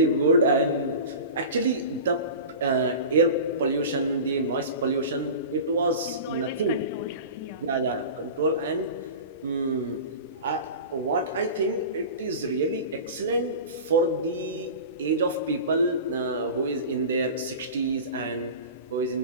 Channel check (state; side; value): inverted; both; correlation -0.33